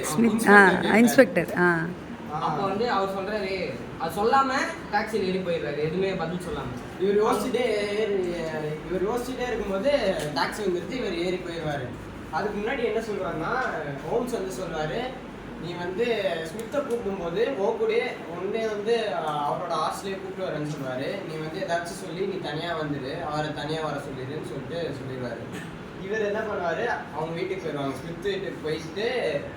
இன்ஸ்பெக்டர். அப்போ வந்து அவர் சொல்றாரு, அது சொல்லாம டாக்ஸியில் ஏறி போயிடுறாரு, எதுவுமே பதில் சொல்லாம. இவர் யோசிச்சுட்டே இருக்கும்போது டாக்ஸி வந்துருச்சு, இவர் ஏறி போயிடுவாரு. அதுக்கு முன்னாடி என்ன சொல்லுவாருன்னா, ஹோம்ஸ் வந்து சொல்றாரு, நீ வந்து ஸ்மித்தை கூப்பிடும்போது ஓகூடே ஒன்னே வந்து அவரோட ஹாஸ்டலே கூப்பிட்டு வரேன்னு சொல்லுவாரு. நீ வந்து ஏதாச்சும் சொல்லி நீ தனியா வந்துடு, அவரை தனியா வர சொல்லிடுன்னு சொல்லிட்டு சொல்லிடுவாரு. இவர் என்ன பண்ணுவாரு, அவங்க வீட்டுக்கு போயிடுவாங்க. ஸ்மித் வீட்டுக்கு போயிட்டு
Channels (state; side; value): identical; both; correlation 1.00